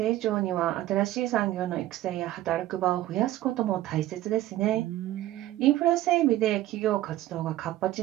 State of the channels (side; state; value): left; quieter; 14.8 dB